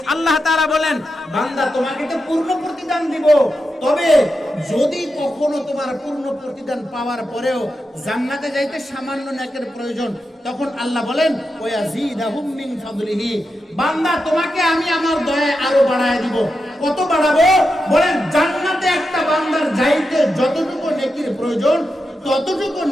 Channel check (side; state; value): both; normal; correlation 0.88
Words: আল্লাহ তাআলা বলেন বান্দা তোমাকে তো পূর্ণ প্রতিদান দিব, তবে যদি কখনো তোমার পূর্ণ প্রতিদান পাওয়ার পরেও জান্নাতে যাইতে সামান্য নেকের প্রয়োজন, তখন আল্লাহ বলেন ওয়া ইয়াজিদাহুম মিন ফাদলিহি, বান্দা তোমাকে আমি আমার দয়ায় আরো বাড়ায় দিব। কত বাড়াবো? বলেন জান্নাতে একটা বান্দার যাইতে যতটুকু নেকির প্রয়োজন ততটুকু